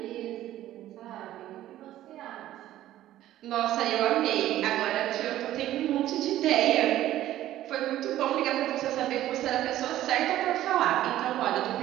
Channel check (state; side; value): quieter; left; 13.6 dB